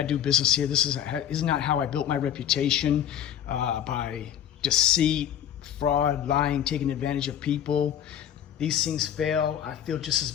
do business here. This is not how I built my reputation, by deceit, fraud, lying, taking advantage of people. These things fail. I feel just as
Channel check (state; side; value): quieter; right; 10.0 dB